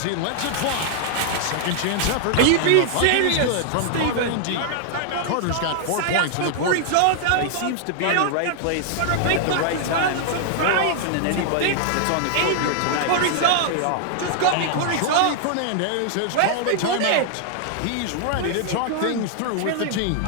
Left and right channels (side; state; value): both; different; correlation -0.01